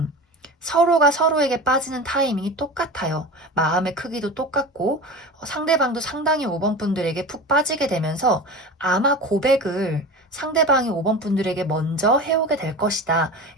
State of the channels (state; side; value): normal; both; correlation 0.31